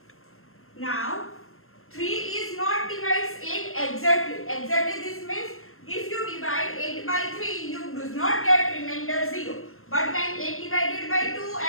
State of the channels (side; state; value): right; late; 0.62 ms